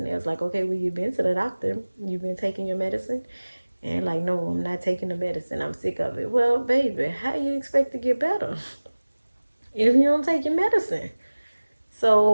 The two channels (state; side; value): inverted; both; correlation -1.00